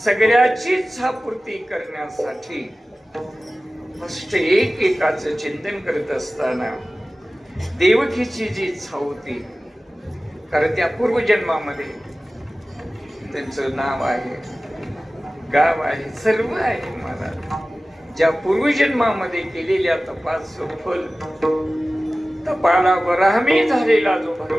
इच्छापूर्ती करण्यासाठी फक्त एकाचं चिंतन करत असताना देवकीची जी इच्छा होती, कारण त्या पूर्वजन्मामध्ये त्यांचं नाव आहे, गाव आहे, सर्व आहे. मला ज्या पूर्वजन्मामध्ये केलेल्या तपाचं फल, तपाला वराहमी झालेला जो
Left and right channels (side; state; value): both; normal; correlation 0.96